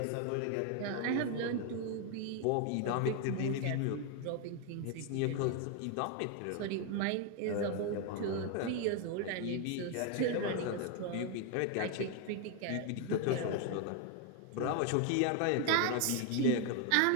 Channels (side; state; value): both; different; correlation 0.01